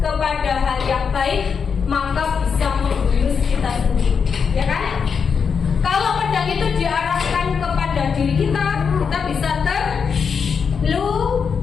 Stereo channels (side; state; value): right; quieter; 6.2 dB